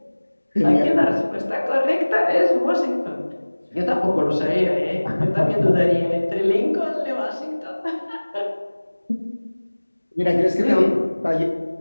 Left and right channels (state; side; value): inverted; both; correlation -1.00